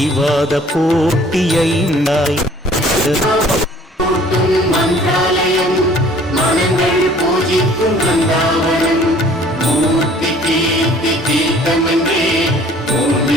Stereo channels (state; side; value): normal; both; correlation 0.54